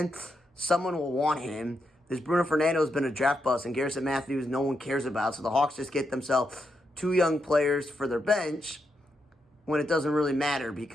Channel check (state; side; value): normal; both; correlation 0.83